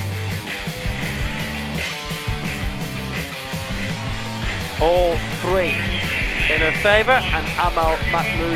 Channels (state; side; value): identical; both; correlation 1.00